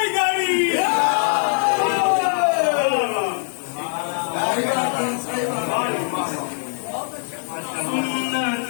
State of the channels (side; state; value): right; silent; 64 dB below the other